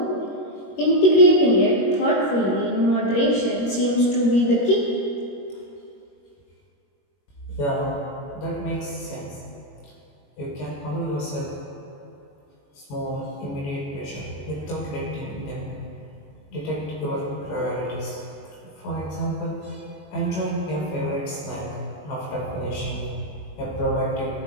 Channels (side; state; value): right; late; 21 ms